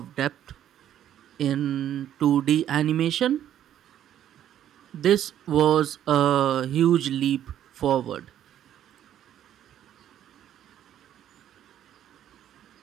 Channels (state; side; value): quieter; left; 10.9 dB